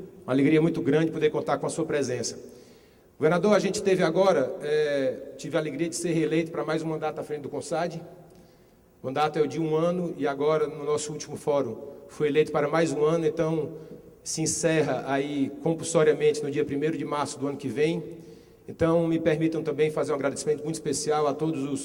Uma alegria muito grande poder contar com a sua presença. Governador, a gente teve agora, tive a alegria de ser reeleito para mais um mandato à frente do CONSAD. O mandato é o de 1 ano e agora, no nosso último fórum, fui eleito para mais um ano, então se encerra aí compulsoriamente no dia 1º de março do ano que vem. Então, me permitam também fazer um agradecimento muito especial a todos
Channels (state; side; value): identical; both; correlation 1.00